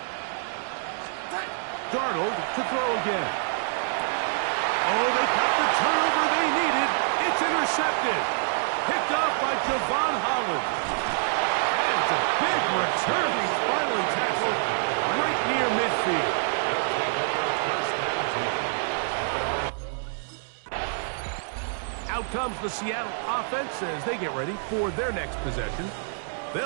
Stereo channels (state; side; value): silent; left; digital silence